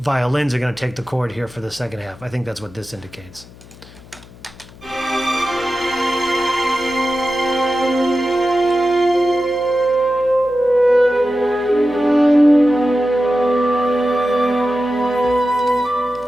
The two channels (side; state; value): left; noise; hum, 21 dB below the sound